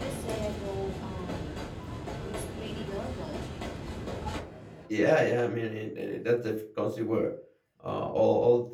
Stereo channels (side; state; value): both; identical; correlation 1.00